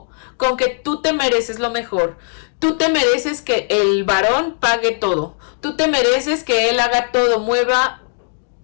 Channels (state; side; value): silent; right; digital silence